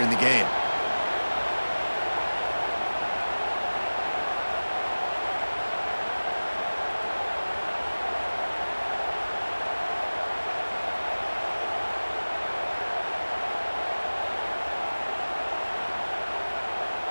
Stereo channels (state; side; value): inverted; both; correlation -1.00